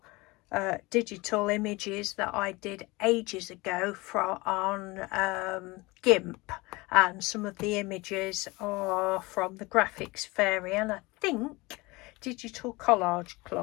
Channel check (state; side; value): quieter; right; 23.3 dB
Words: digital images that I did ages ago on GIMP, and some of the images are from the Graphics Fairy and I think Digital Collage